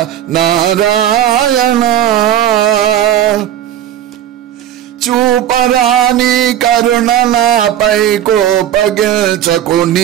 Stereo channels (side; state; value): left; quieter; 11.1 dB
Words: नारायण చూపరాని కరుణ నాపై కోపగించకు